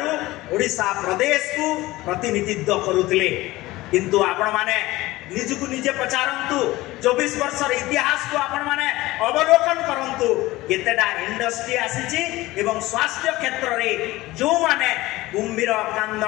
ओडिशा प्रदेश को प्रतिनिधित्व करुथिले किंतु आपण माने निजकु निजे पचारंतु 24 वर्षर इतिहास को आपण माने अवलोकन करंतु केतेडा इंडस्ट्री आसीची एवं स्वास्थ्य क्षेत्र रे जो माने कुंभीर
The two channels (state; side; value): quieter; right; 18.6 dB